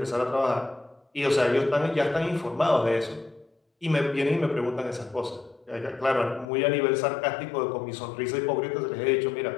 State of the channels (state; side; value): drops out; right; at 6.5 s